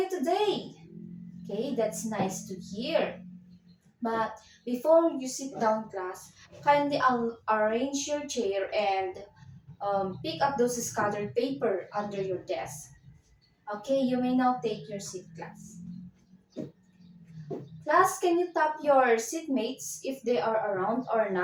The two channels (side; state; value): both; identical; correlation 1.00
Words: today? Okay, that's nice to hear. But before you sit down, class, kindly arrange your chair and pick up those scattered paper under your desk. Okay, you may now take your seat, class. Class, can you tap your seatmates if they are around or